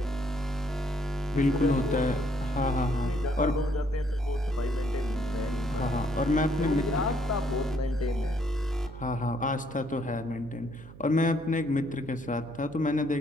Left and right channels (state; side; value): noise; right; hum, 17 dB below the sound